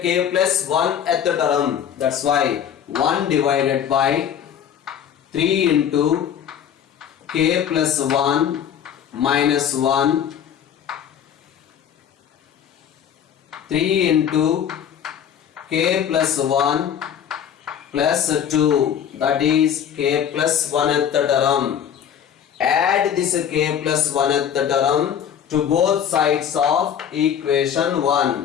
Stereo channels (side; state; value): right; quieter; 8.9 dB